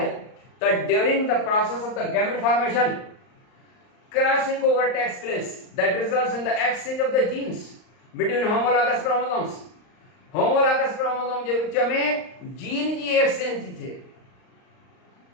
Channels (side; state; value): right; late; 39 ms